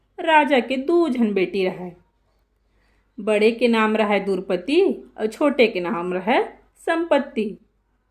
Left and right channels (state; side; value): identical; both; correlation 1.00